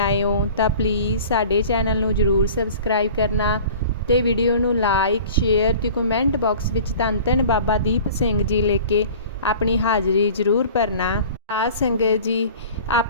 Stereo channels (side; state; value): both; inverted; correlation -0.43